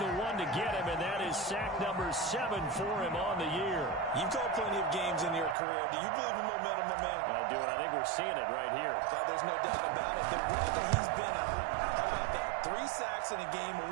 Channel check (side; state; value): left; drops out; at 5.6 s